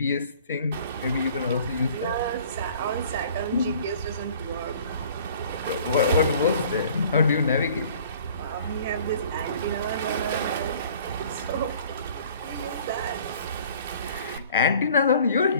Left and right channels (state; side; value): inverted; both; correlation -0.51